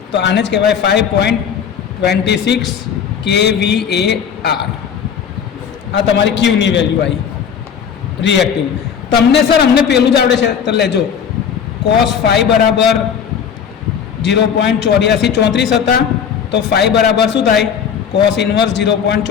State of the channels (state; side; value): quieter; right; 7.6 dB